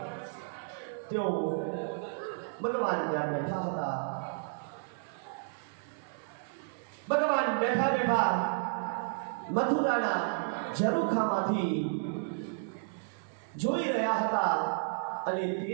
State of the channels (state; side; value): silent; left; 56 dB below the other